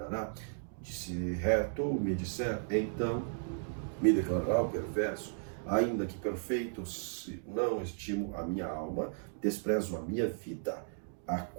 Se reto me disser, então me declarará o perverso. Ainda que perfeito, se não estimo a minha alma, desprezo a minha vida. A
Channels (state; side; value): silent; left; digital silence